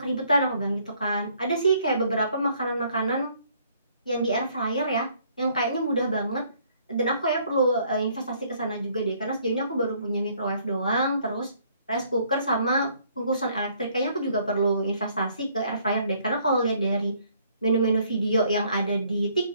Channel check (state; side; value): inverted; both; correlation -0.64